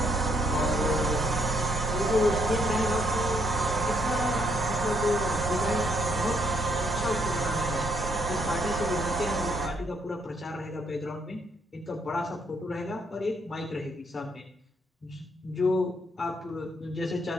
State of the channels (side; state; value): both; normal; correlation 0.71